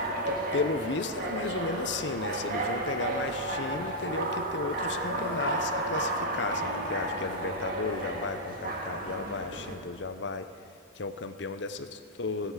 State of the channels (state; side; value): normal; both; correlation -0.07